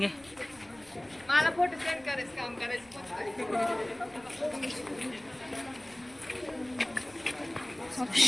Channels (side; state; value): left; noise; rumble, 29 dB below the sound